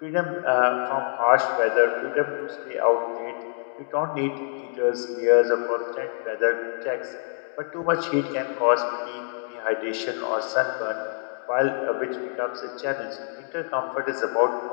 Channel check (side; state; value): right; silent; digital silence